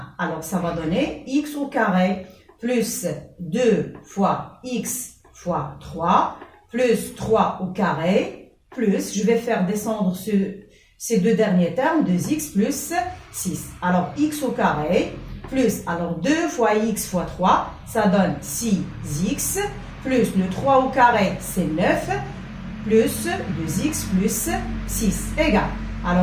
Alors, ça va donner x au carré plus 2 fois x fois 3, plus 3 au carré, plus, je vais faire descendre ces deux derniers termes, 2x plus 6. Alors, x au carré, plus, alors 2 fois x fois 3, ça donne 6x, plus le 3 au carré, c'est 9, plus 2x plus 6, égal.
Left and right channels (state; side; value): identical; both; correlation 1.00